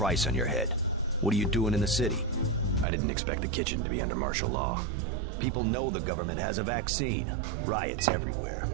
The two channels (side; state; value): left; drops out; at 2.9 s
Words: on your head. What are you doing in the city? I didn't expect the kitchen to be under martial law. People know the government has a vaccine. Riots everywhere.